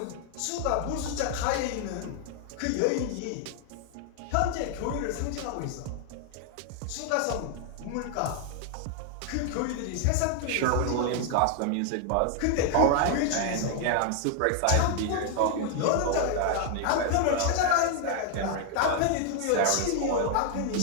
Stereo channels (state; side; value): different; both; correlation 0.00